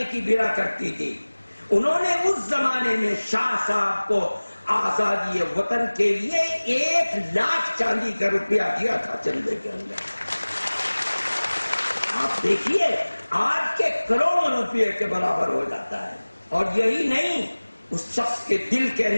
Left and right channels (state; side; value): inverted; both; correlation -1.00